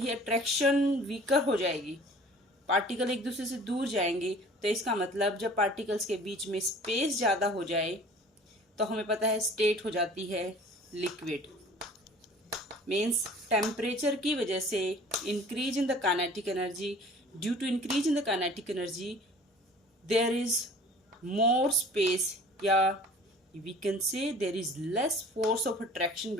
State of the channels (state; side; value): normal; both; correlation 0.47